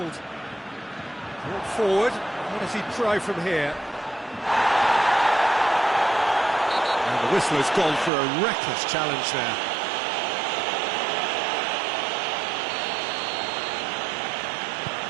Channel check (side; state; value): left; drops out; at 8.1 s